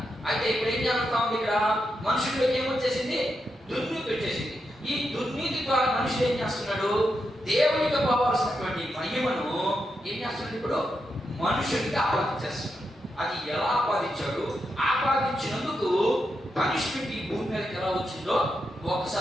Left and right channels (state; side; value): normal; both; correlation 0.85